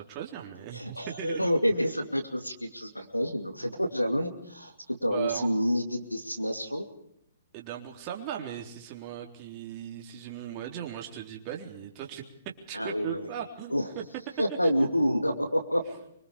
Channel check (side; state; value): both; inverted; correlation -0.88